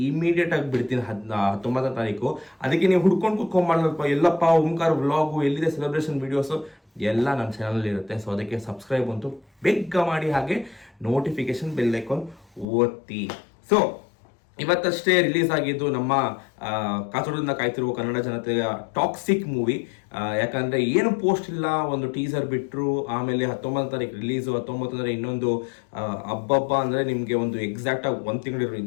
ಇಮಿಡಿಯೇಟಾಗಿ ಬಿಡ್ತೀನಿ 19ನೇ ತಾರೀಕು. ಅದಕ್ಕೆ ನೀವು ಹುಡ್ಕೊಂಡು ಕುತ್ಕೊಂಡ್ಬಾರ್ದಲ್ಪ, ಎಲ್ಲಪ್ಪ ಓಂಕಾರ ವ್ಲಾಗು ಎಲ್ಲಿದೆ ಸೆಲೆಬ್ರೇಷನ್ ವೀಡಿಯೋಸು ಎಲ್ಲ ನನ್ನ ಚಾನಲ್ ಇರುತ್ತೆ. ಸೊ ಅದಕ್ಕೆ ಸಬ್ಸ್ಕ್ರೈಬ್ ಅಂತೂ ಬೇಗ ಮಾಡಿ, ಹಾಗೆ ನೋಟಿಫಿಕೇಶನ್ ಬೆಲ್ ಐಕಾನ್ ಒತ್ತಿ. ಸೊ ಇವತ್ತಷ್ಟೇ ರಿಲೀಸ್ ಆಗಿದ್ದು ನಮ್ಮ ಕಾತುರದಿಂದ ಕಾಯ್ತಿರುವ ಕನ್ನಡ ಜನತೆಯ ಟಾಕ್ಸಿಕ್ ಮೂವಿ. ಯಾಕಂದರೆ ಏನು ಪೋಸ್ಟ್ ಇಲ್ಲ, ಒಂದು ಟೀಸರ್ ಬಿಟ್ಟರು, ಆಮೇಲೆ 19ನೇ ತಾರೀಕು ರಿಲೀಸು. 19 ಅಂದರೆ ಇನ್ನೊಂದು ಹಬ್ಬ ಅಂದರೆ ನಿಮಗೆ ಒಂದು ಎಕ್ಸಾಕ್ಟಾಗಿ 1 ತಿಂಗಳು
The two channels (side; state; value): right; drops out; at 12.7 s